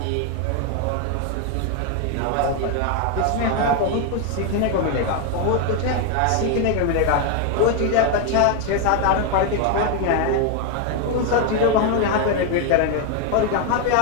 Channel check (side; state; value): both; different; correlation 0.01